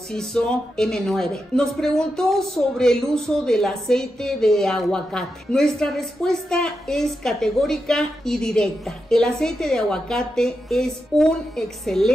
hizo M9. Nos preguntó sobre el uso del aceite de aguacate. Nuestra respuesta es categórica y directa. El aceite de aguacate es un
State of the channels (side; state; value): both; normal; correlation 0.87